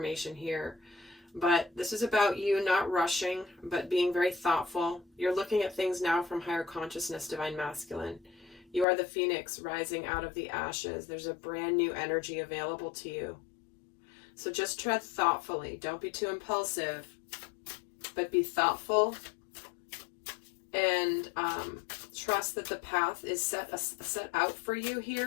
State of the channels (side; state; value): right; drops out; at 8.8 s